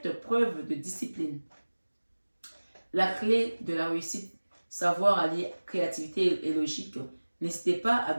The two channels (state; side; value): inverted; both; correlation -1.00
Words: preuve de discipline. La clé de la réussite, savoir allier créativité et logique. N'hésitez pas à